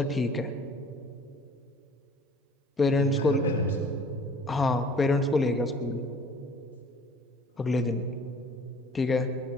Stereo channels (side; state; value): both; normal; correlation 0.50